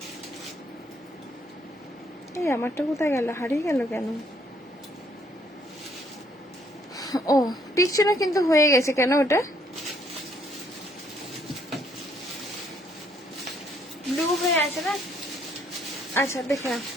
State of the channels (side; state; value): both; normal; correlation 0.67